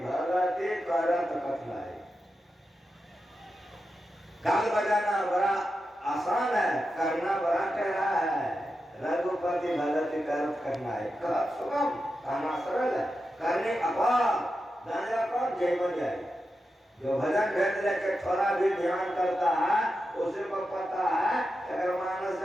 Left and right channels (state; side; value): normal; both; correlation 0.89